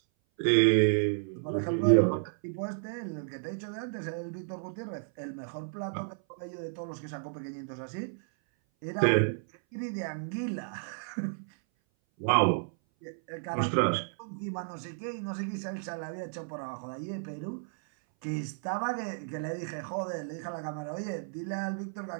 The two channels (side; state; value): left; silent; 56 dB below the other